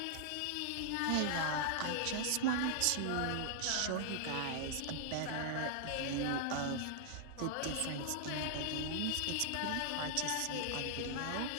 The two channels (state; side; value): different; both; correlation 0.00